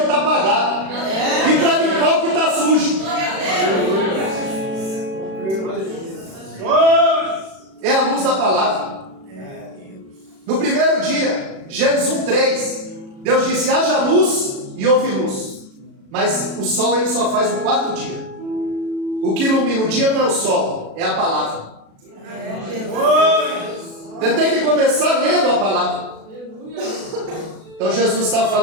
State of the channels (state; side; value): late; left; 36 ms